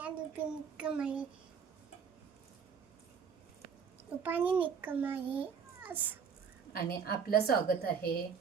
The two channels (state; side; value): quieter; left; 6.6 dB